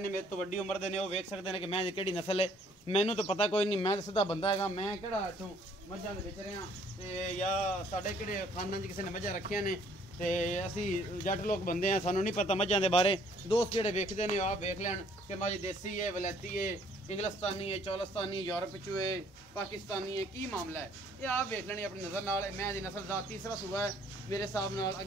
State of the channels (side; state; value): both; normal; correlation 0.61